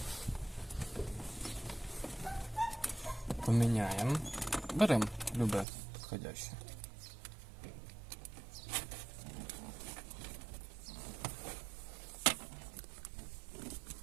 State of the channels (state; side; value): drops out; left; at 5.7 s